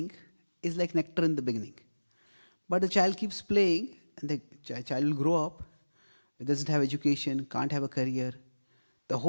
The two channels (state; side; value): inverted; both; correlation -1.00